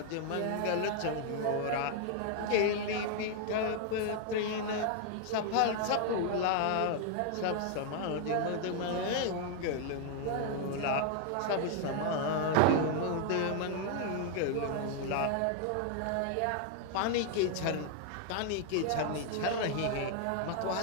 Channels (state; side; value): different; both; correlation 0.00